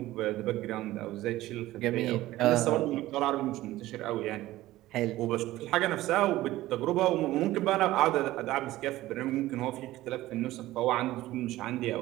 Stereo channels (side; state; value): left; quieter; 16.3 dB